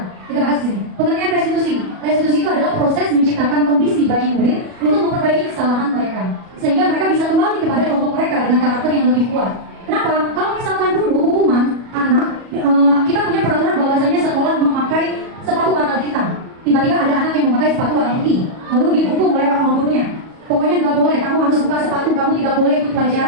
Kita bahas di sini. Pengertian restitusi. Restitusi itu adalah proses menciptakan kondisi bagi murid untuk memperbaiki kesalahan mereka, sehingga mereka bisa kembali kepada kelompok mereka dengan karakter yang lebih kuat. Kenapa? Kalau misalkan dulu hukuman anak, kita punya peraturan bahwasanya sekolah memakai sepatu warna hitam. Tiba-tiba ada anak yang memakai sepatu warna putih, lalu dihukum oleh orang gurunya. Pokoknya nggak boleh, kamu harus buka sepatu, kamu tidak boleh ikut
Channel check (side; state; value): left; late; 37 ms